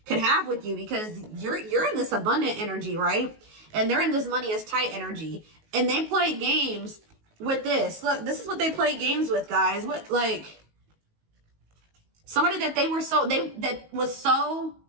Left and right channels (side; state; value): left; late; 19 ms